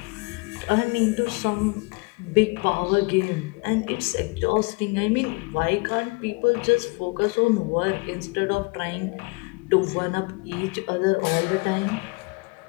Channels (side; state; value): right; quieter; 28.1 dB